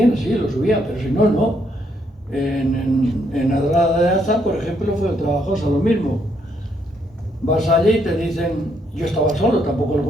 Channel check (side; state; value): both; normal; correlation 0.73